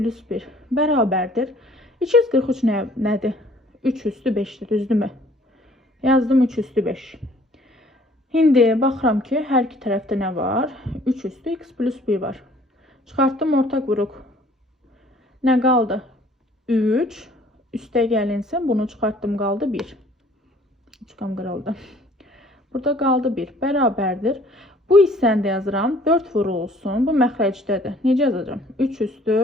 1 bərabərdir. 243 nədir? 3 üstü 5'dir, düzdürmü? Yazdım 3 üstü 5. Şimdi baxıram ki, hər iki tərəfdə nə var? 3 üstü x plus 1 var. Çıxartdım ortaq vuruq. Nə qaldı? 3. Üste gəlinsin, bunu çıxartdım, qaldı 1. Üçqam qırıldı. Burada qaldı 1. Bərabərdir. Bu hissəni də yazıram. 4 vurulsun. Bu məxrəcdədir. Necə yazacağım? 3 üstü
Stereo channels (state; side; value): normal; both; correlation 0.56